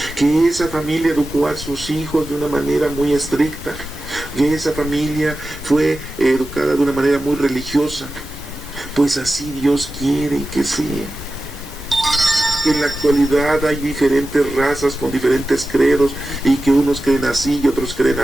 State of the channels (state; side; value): noise; right; hiss, 23 dB below the sound